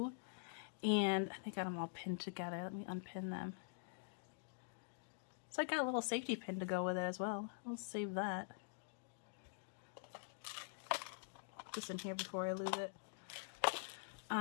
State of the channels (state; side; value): silent; right; digital silence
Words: And I think I got them all pinned together. Let me unpin them. So I got a little safety pin to go with it as well. I'll save that. Just in here before I lose it.